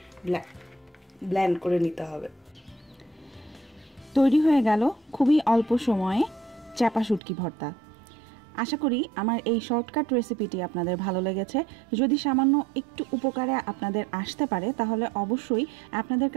ব্লেন্ড করে নিতে হবে। তৈরি হয়ে গেল খুবই অল্প সময়ে চাপা শুটকি ভর্তা। আশা করি আমার এই শর্টকাট রেসিপিটি আপনাদের ভালো লেগেছে। যদি সামান্য একটু উপকারে আপনাদের আসতে পারে তাহলে অবশ্যই আপনাদের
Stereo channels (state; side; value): drops out; left; at 7.2 s